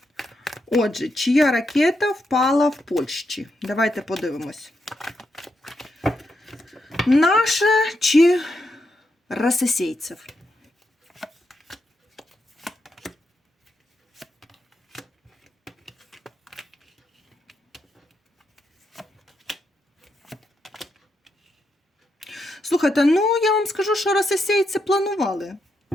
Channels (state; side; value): normal; both; correlation 0.82